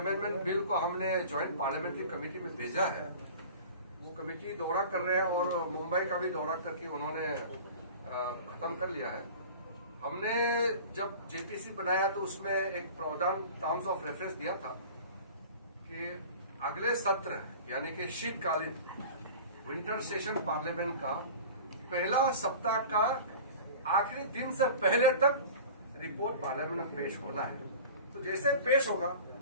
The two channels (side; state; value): both; inverted; correlation -0.39